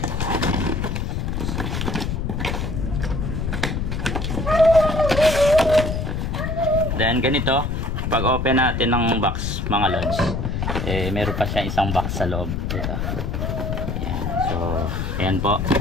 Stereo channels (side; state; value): left; noise; rumble, 2 dB below the sound